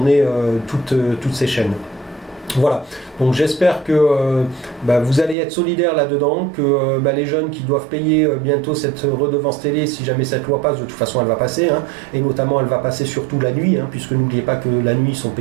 toutes ces chaînes. Voilà, donc j'espère que vous allez être solidaires là-dedans, que les jeunes qui doivent payer bientôt cette redevance télé, si jamais cette loi passe, de toute façon elle va passer, hein, et notamment elle va passer surtout la nuit, hein, puisque n'oubliez pas que la nuit ils sont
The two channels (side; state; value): left; drops out; at 5.4 s